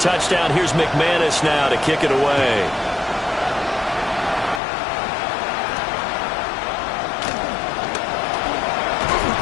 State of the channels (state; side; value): drops out; right; at 4.6 s